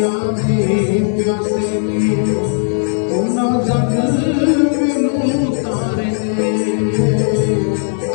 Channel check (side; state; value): right; silent; 69 dB below the other